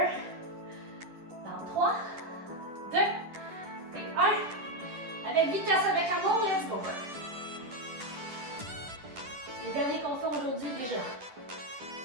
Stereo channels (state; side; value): late; left; 10 ms